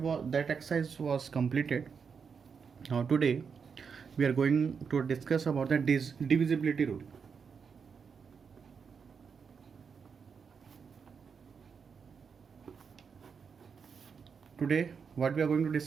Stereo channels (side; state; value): left; quieter; 6.1 dB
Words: exercise was completed. Now today, we are going to discuss about the divisibility rule. Today, what we are going to